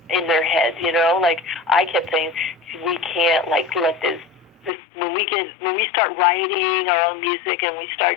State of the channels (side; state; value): right; drops out; at 4.7 s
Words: in their heads. Like I kept saying, we can't like let this when we start writing our own music and we